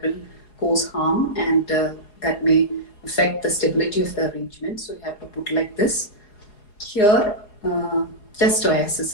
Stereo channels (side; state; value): right; late; 4.8 ms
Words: will cause harm, and that may affect the stability of the arrangement. So you have to put like this. Here, just oasis